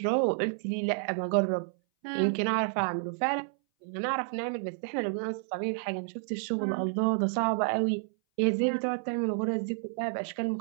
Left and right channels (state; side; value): silent; left; 58 dB below the other